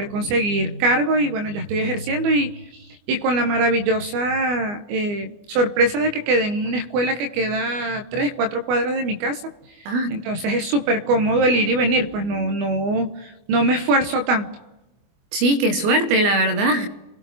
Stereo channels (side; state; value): left; late; 24 ms